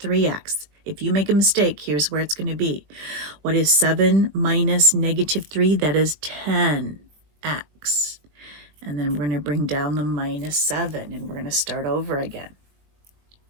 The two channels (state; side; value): late; left; 20 ms